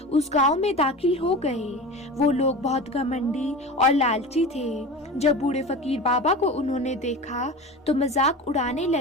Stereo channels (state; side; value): normal; both; correlation 0.31